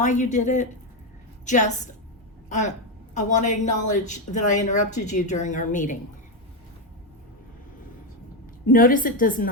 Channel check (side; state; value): both; normal; correlation 0.08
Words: you did it. Just, I want to acknowledge that I interrupted you during our meeting. Notice it does